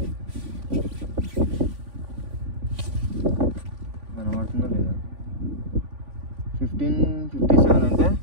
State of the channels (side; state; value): left; late; 3.5 ms